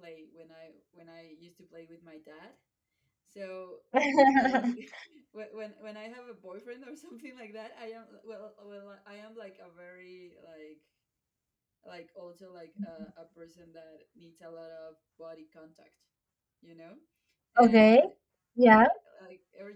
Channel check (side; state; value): both; identical; correlation 1.00